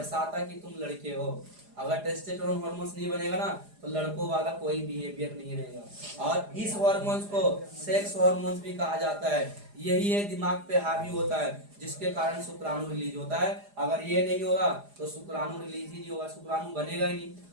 कि तुम लड़के हो। अगर टेस्टोस्टेरोन हार्मोन नहीं बनेगा ना तो लड़कों वाला कोई बिहेवियर नहीं रहेगा। और इस हार्मोन्स को सेक्स हार्मोन्स भी कहा जाता है। यही है दिमाग पे हावी होता है, जिसके कारण शुक्राणु रिलीज होता है। अगर ये नहीं होगा तो शुक्राणु रिलीज ही नहीं होगा, शुक्राणु बनेगा ही नहीं,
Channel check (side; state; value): left; late; 4.9 ms